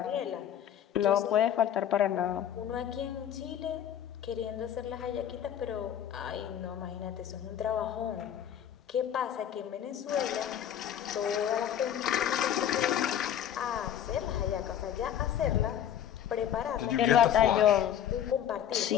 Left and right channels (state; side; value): quieter; right; 10.0 dB